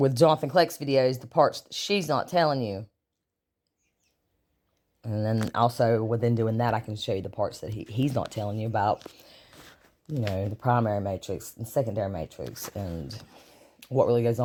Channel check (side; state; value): both; identical; correlation 1.00